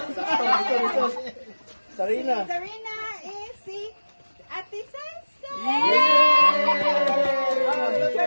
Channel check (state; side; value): inverted; both; correlation -1.00